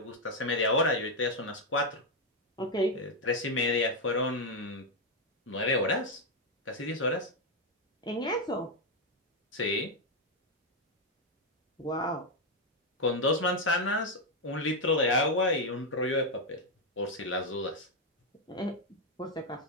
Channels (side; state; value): both; normal; correlation 0.02